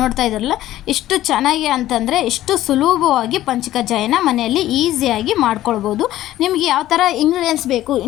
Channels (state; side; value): quieter; right; 14.2 dB